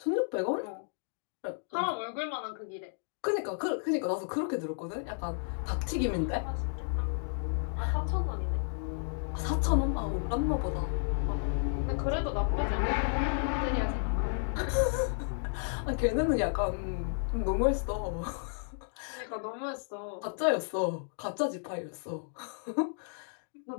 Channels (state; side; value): silent; right; digital silence